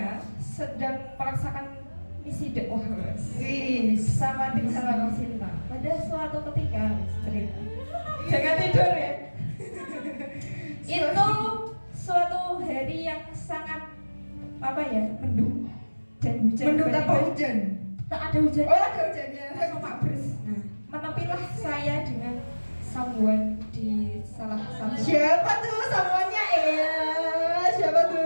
sedang merasakan misi dakwah Wih. sama tim Salam Cinta. Pada suatu ketika cerita. Jangan tidur ya. Itu suatu hari yang sangat apa ya, mendung dan hujan. Mendung tanpa tiba-tiba. hujan. Tak ada hujan. Oh ada hujannya. Langsung mabres. Nah, menepilah saya dengan someone di salah satu. Siapa tuh samuannya? Siapa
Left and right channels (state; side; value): inverted; both; correlation -1.00